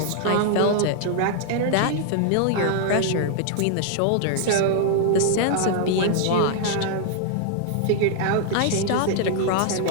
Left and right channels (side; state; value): both; different; correlation -0.01